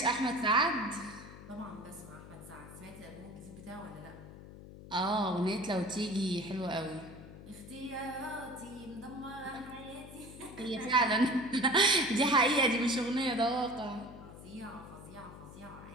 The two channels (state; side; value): noise; left; hum, 15 dB below the sound